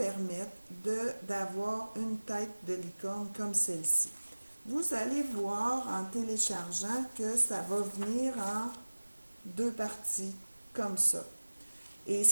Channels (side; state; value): both; inverted; correlation -1.00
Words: d'avoir une tête de licorne comme celle-ci. Vous allez voir en téléchargeant que ça va venir en 2 parties, comme ça. Et